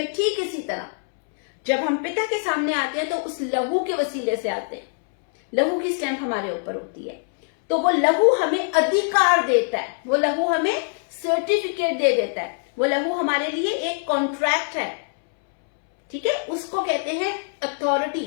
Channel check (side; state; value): right; silent; 63 dB below the other